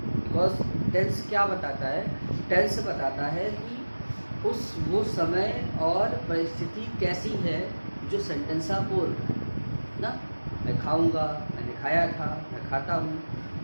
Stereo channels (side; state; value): both; inverted; correlation -1.00